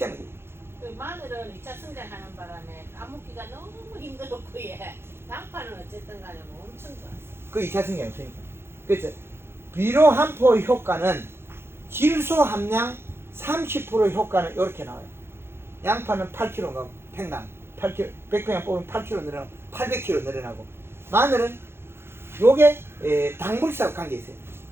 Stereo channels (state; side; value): late; left; 0.12 ms